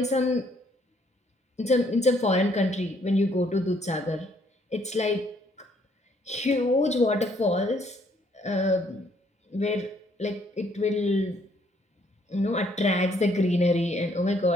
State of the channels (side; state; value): both; normal; correlation 0.67